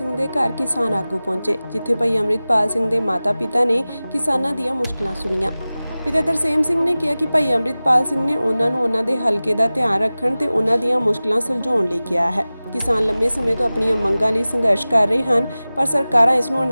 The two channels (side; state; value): both; inverted; correlation -0.97